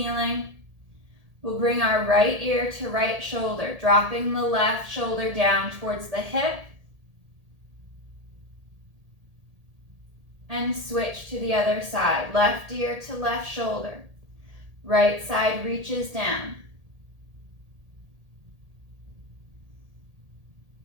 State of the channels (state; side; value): late; left; 1.8 ms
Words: We'll bring our right ear to right shoulder, dropping the left shoulder down towards the hip. And switch to the other side. Left ear to left shoulder. Right side reaches down.